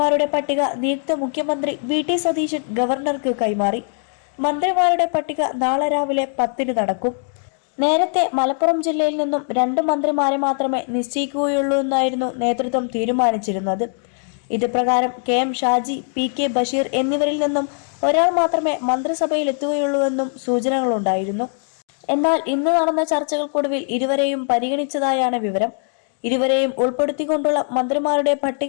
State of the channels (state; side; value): silent; right; 61 dB below the other